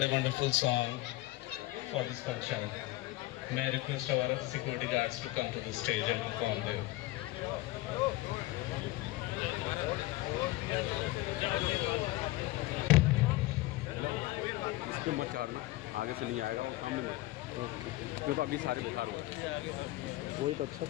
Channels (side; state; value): right; quieter; 18.7 dB